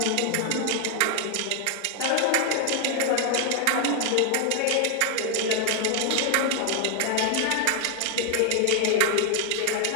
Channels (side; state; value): both; different; correlation 0.00